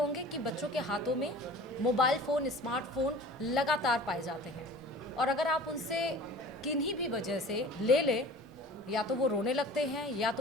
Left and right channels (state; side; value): normal; both; correlation 0.42